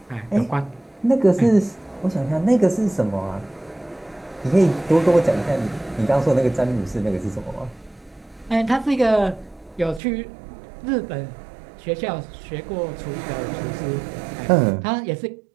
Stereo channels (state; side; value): drops out; left; at 10.0 s